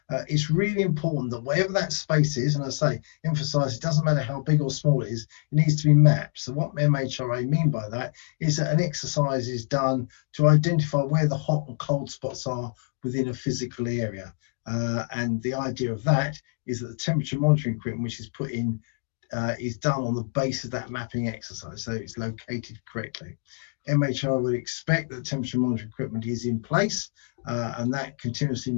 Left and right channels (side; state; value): right; silent; digital silence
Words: It's really important that wherever that space is, and I say, emphasise, it doesn't matter how big or small it is, it needs to be mapped. So what MHRA mean by that is that an exercise is done to identify where the hot and cold spots are within a physical area. And the idea of that is that the temperature monitoring equipment which is put in is done on the base of that mapping exercise, so it's located correctly. MHRA would expect that temperature monitoring equipment is in place and that continuously